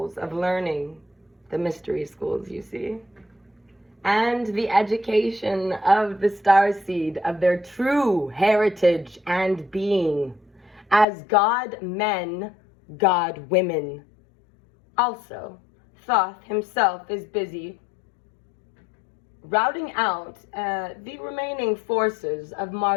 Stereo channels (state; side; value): drops out; right; at 11.1 s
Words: of learning, the mystery schools, you see, and the education of the starseed of their true heritage and being as God men, God women. Also, Thoth himself is busy routing out the remaining forces of